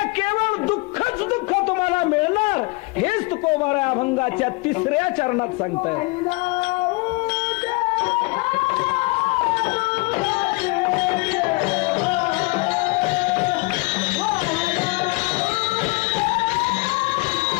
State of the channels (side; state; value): right; quieter; 26.7 dB